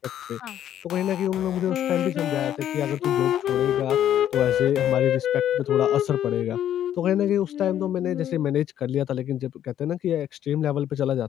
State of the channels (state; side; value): quieter; right; 10.8 dB